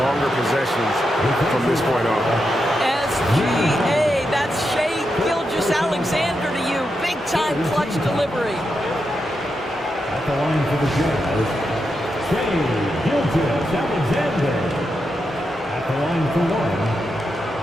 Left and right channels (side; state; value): both; normal; correlation 0.86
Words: possessions from this point on. SGA, that's Shai Gilgeous-Alexander to you. Big-time clutch delivery. At the line for the Jazz, Shai Gilgeous-Alexander. At the line for 1.